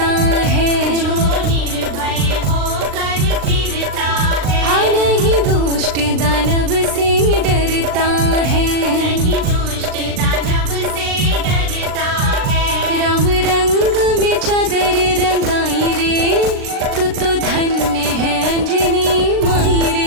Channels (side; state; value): left; late; 39 ms